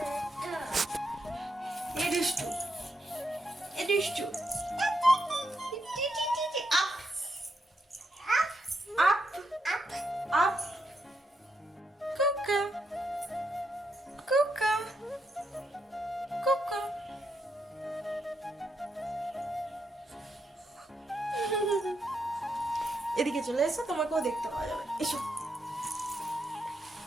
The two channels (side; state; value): both; normal; correlation 0.81